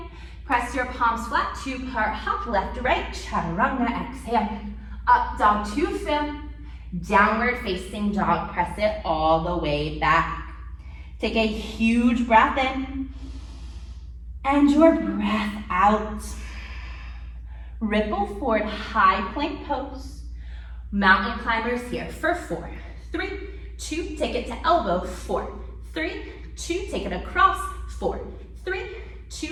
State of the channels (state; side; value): identical; both; correlation 1.00